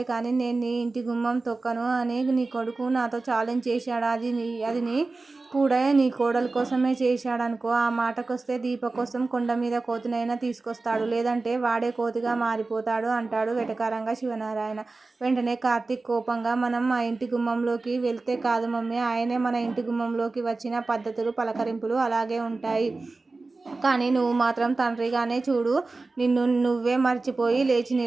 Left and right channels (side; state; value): left; quieter; 3.6 dB